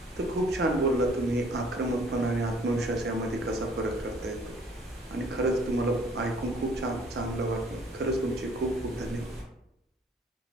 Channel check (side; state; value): both; normal; correlation 0.57